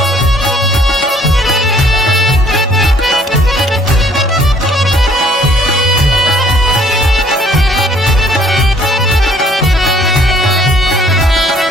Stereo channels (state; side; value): normal; both; correlation 0.60